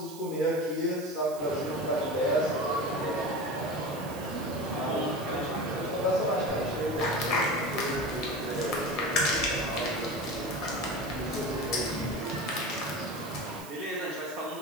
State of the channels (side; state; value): right; noise; hiss, 16 dB below the sound